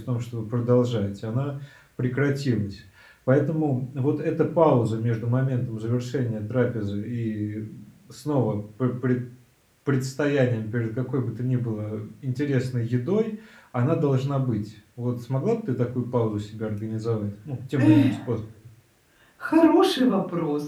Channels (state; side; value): identical; both; correlation 1.00